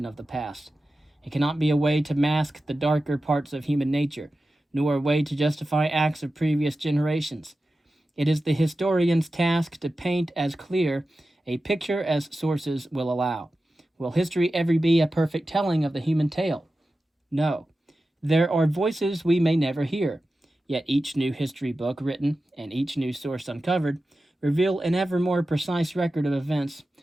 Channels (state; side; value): normal; both; correlation 0.93